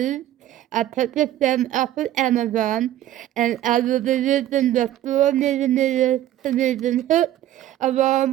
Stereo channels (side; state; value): left; quieter; 12.9 dB